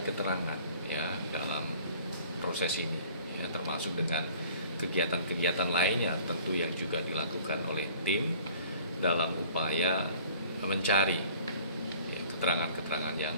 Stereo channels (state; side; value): inverted; both; correlation -0.51